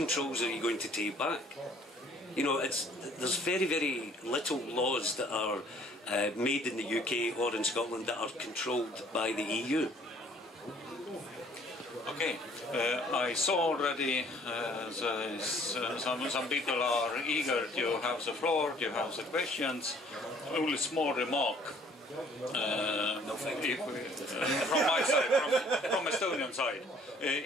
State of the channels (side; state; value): both; normal; correlation 0.58